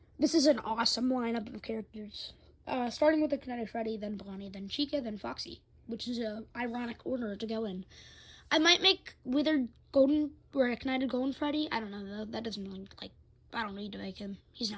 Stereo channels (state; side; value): identical; both; correlation 1.00